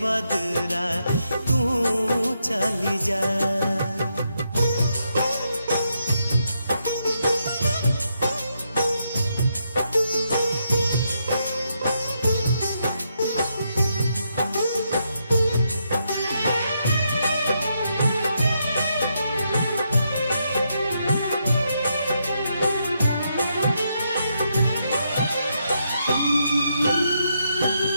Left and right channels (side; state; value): both; inverted; correlation -0.80